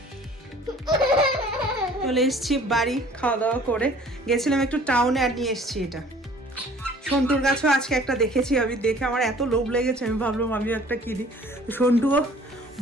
চলে এসছি বাড়ি, খাওয়া দাওয়া করে গেছিলাম একটু টাউনে, আর নিয়ে এসছি এটা। সন্টুর গাছও আজকে একটা দেখেছি আমি, দেখে আমার এত লোভ লেগেছে, আমি ভাবলাম আমিও একটা কিনি। সন্টুও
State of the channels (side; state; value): both; normal; correlation 0.52